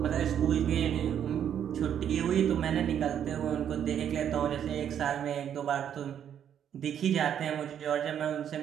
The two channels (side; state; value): left; quieter; 9.3 dB